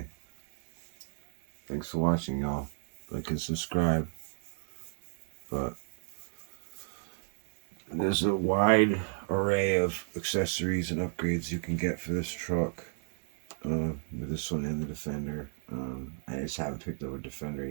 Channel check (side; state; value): left; silent; 56 dB below the other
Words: thanks for watching, y'all. Like and subscribe. But there's a wide array of accessories and upgrades you can get for this truck. With this one and the Defender. I just haven't picked up a Defender